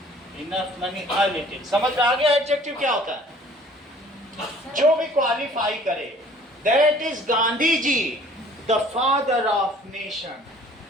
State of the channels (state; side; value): normal; both; correlation 0.52